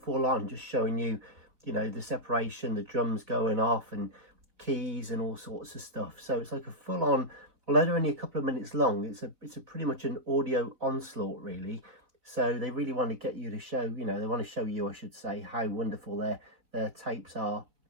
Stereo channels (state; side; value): late; left; 3.9 ms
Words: on, just showing you, you know, the separation, the drums going off and keys and all sorts of stuff. So it's like a full on, although they're only a couple of minutes long, it's a pretty much an audio onslaught really. So they really want to get you to show, you know, they want to show you, I should say, how wonderful their tapes are.